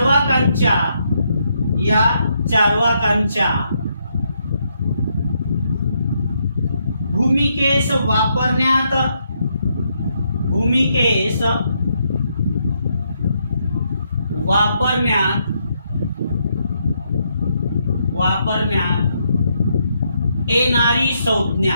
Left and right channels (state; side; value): inverted; both; correlation -0.77